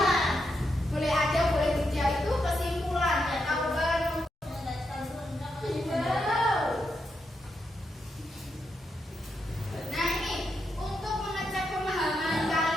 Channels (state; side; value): normal; both; correlation 0.83